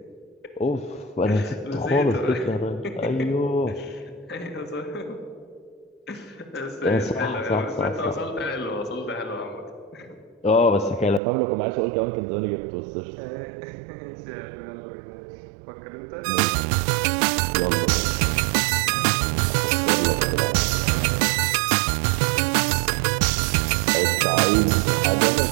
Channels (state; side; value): drops out; left; at 11.2 s